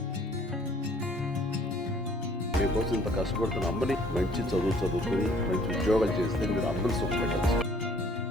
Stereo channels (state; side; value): normal; both; correlation 0.58